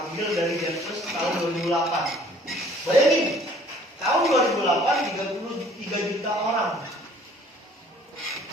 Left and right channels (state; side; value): normal; both; correlation 0.56